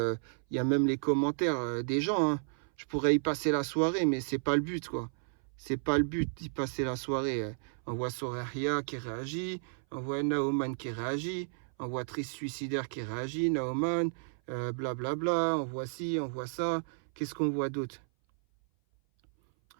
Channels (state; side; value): silent; left; 56 dB below the other